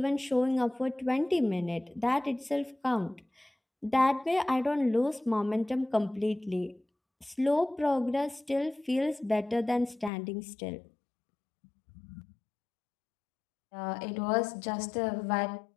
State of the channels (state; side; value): drops out; right; at 10.1 s